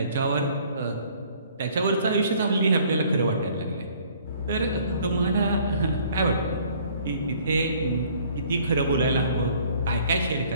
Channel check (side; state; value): both; inverted; correlation -0.58